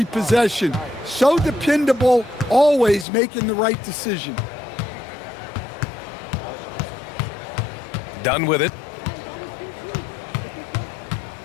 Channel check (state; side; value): drops out; right; at 3.1 s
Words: possession. So dependable, always making the right decision. Done with it.